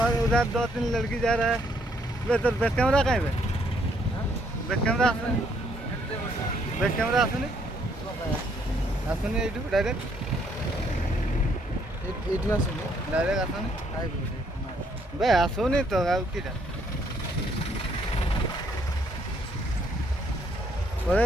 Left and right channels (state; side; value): normal; both; correlation 0.69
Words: और उधर 2-3 लड़की जा रहा है। वे तो बैक कैमरा कहीं पे बैक कैमरा आसुनी एटू डायरेक्ट आसुनी बे आसुनी तो किटा पढ़े